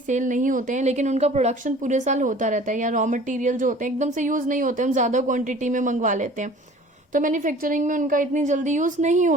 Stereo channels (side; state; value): both; normal; correlation 0.47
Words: नहीं होते हैं लेकिन उनका प्रोडक्शन पूरे साल होता रहता है, या रॉ मटेरियल जो होते हैं एकदम से यूज नहीं होते, हम ज्यादा क्वांटिटी में मंगवा लेते हैं, तो मैन्युफैक्चरिंग में उनका इतनी जल्दी यूज नहीं